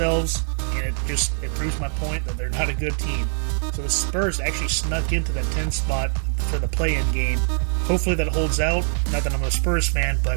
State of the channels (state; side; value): silent; left; digital silence